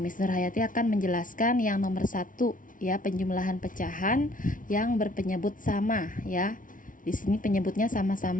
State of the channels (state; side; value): late; right; 0.38 ms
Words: Nurhayati akan menjelaskan yang nomor 1 ya, penjumlahan pecahan yang berpenyebut sama ya. Di sini penyebutnya